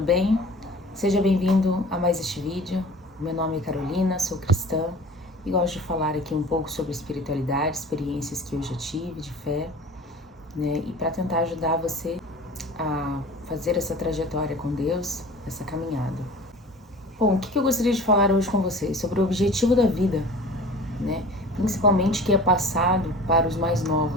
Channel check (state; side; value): normal; both; correlation 0.41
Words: bem? Seja bem-vindo a mais este vídeo. Meu nome é Carolina, sou cristã e gosto de falar aqui um pouco sobre espiritualidade, experiências que eu já tive de fé, né? E para tentar ajudar você a fazer essa trajetória com Deus, essa caminhada. Bom, o que eu gostaria de falar hoje com vocês? Sobre o objetivo da vida, né? Principalmente que é passado para os mais